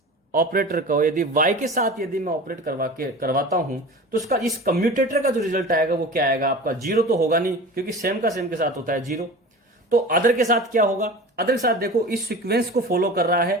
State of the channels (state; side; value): normal; both; correlation 0.35